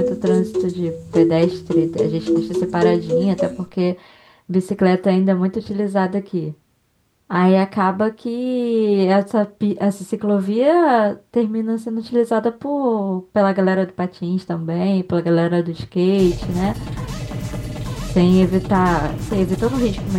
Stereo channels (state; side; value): identical; both; correlation 1.00